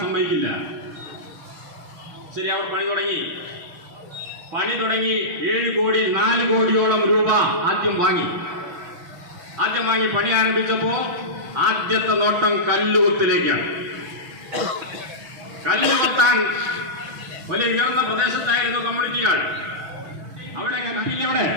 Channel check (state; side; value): late; left; 6.1 ms